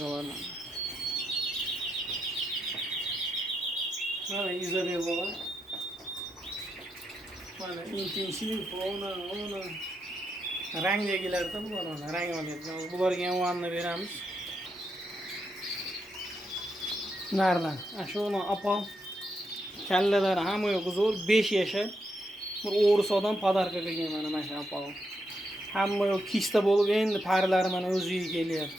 mana. Mana Izabella. Mana intensiv ona rangdagilarda bular mana rang olyapti. Bularga ham vanna beramiz. Nereden? Şunu apal. Kelleler hamı yok zor 5 yaşa. Bir O'g'risodan padarka qilgan mana shu apal. Hamma yok kista bo'lib endi parlari mana o'ziga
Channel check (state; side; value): normal; both; correlation 0.82